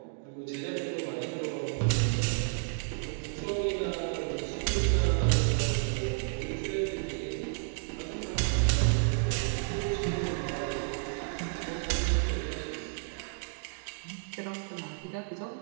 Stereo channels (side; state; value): left; silent; digital silence